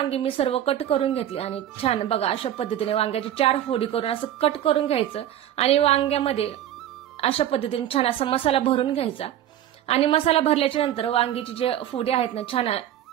मी सर्व कट करून घेतली आणि छान बघा अशा पद्धतीने वांग्याची 4 फोडी करून असं कट करून घ्यायचं आणि वांग्यामध्ये अशा पद्धतीने छान असा मसाला भरून घ्यायचा. आणि मसाला भरल्याच्या नंतर वांगीची जे फोडी आहेत ना छान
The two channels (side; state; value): left; quieter; 11.7 dB